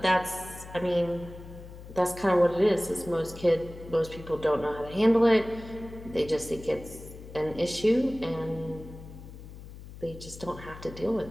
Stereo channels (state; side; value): noise; left; hum, 15 dB below the sound